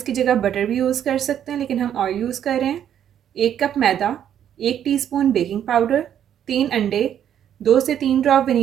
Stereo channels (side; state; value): left; quieter; 9.8 dB